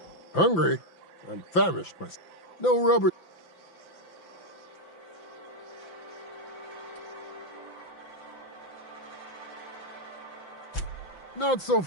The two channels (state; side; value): late; right; 5.9 ms